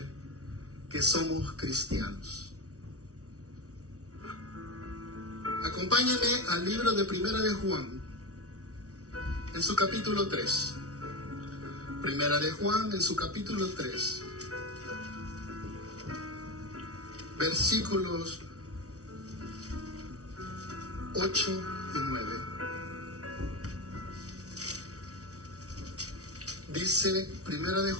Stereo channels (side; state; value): left; late; 0.66 ms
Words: que somos cristianos. Acompáñame al libro de Primera de Juan, en su capítulo 3. Primera de Juan, en su capítulo 3. Versículos 8 y 9. Dice Primera de